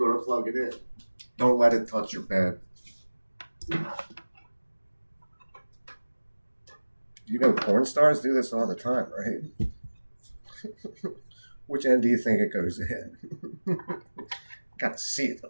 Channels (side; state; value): both; inverted; correlation -1.00